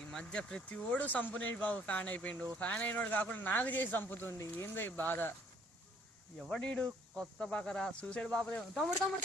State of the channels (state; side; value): normal; both; correlation 0.60